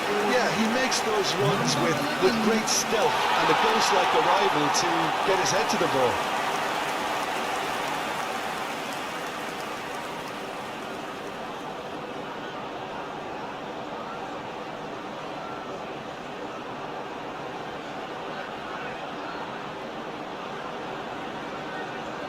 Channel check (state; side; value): noise; right; rumble, 30 dB below the sound